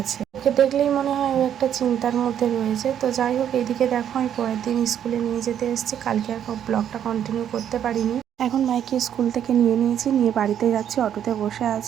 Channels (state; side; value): quieter; left; 9.6 dB